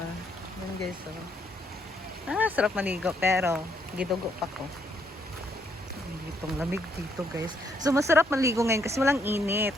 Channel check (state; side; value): normal; both; correlation 0.72